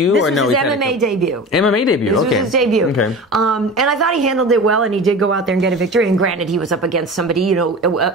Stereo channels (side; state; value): both; normal; correlation 0.33